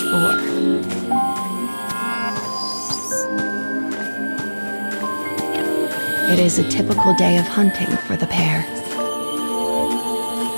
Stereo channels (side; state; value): both; inverted; correlation -1.00